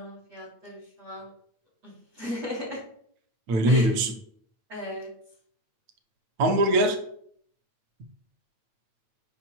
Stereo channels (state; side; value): late; left; 8.8 ms